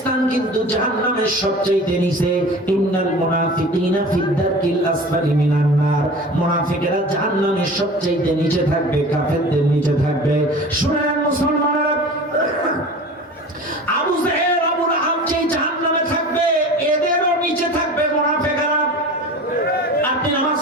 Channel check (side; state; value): both; normal; correlation 0.38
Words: কিন্তু জাহান্নামের সবচেয়ে নিচে। ইন্নাল মুনাফিকিনা ফিদ দারকিল আসফালি মিনান নার। মুনাফিকেরা জাহান্নামের সবচেয়ে নিচে থাকবে, কাফেরদের নিচে থাকবে। শুনেন মুসলমানেরা,